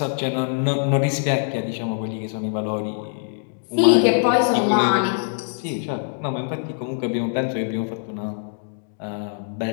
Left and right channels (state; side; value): silent; right; digital silence